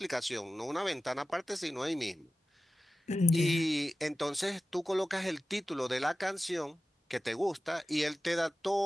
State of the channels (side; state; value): both; normal; correlation 0.93